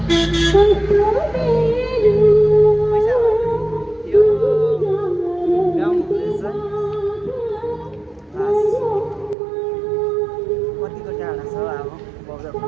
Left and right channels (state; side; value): drops out; left; at 9.3 s